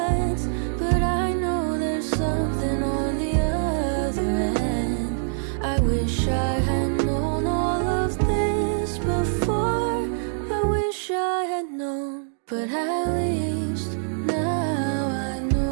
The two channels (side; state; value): left; silent; digital silence